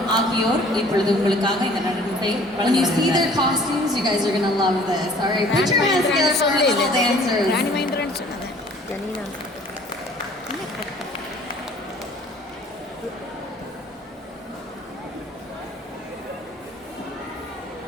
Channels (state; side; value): normal; both; correlation 0.53